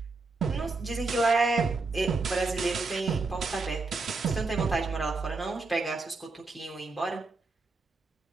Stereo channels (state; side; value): quieter; left; 3.7 dB